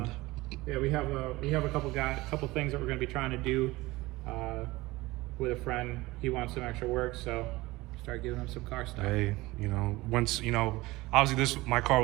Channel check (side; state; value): left; quieter; 20.2 dB